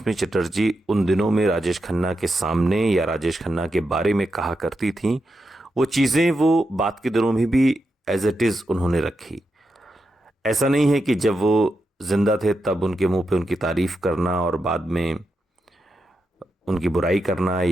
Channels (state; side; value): normal; both; correlation 0.86